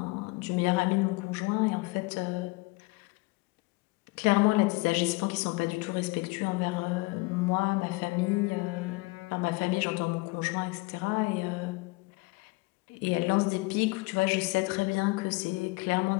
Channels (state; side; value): quieter; right; 25.1 dB